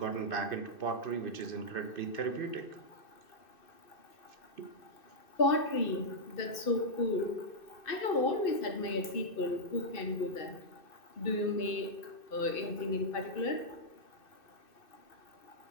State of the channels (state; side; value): late; right; 2.6 ms